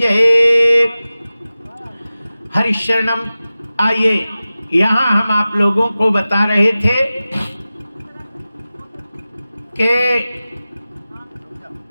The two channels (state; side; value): inverted; both; correlation -0.96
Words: हरिशरणम। आइए, यहाँ हम आप लोगों को बता रहे थे कि